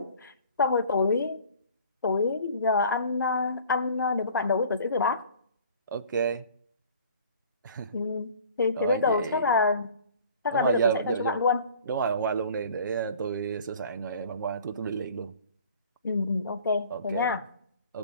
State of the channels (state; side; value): inverted; both; correlation -0.48